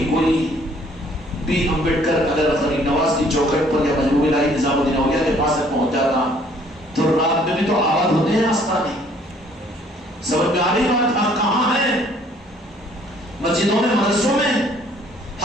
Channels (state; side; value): normal; both; correlation 0.60